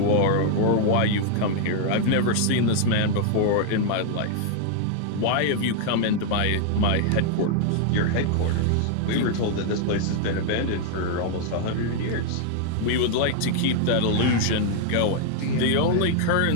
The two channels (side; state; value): both; different; correlation 0.00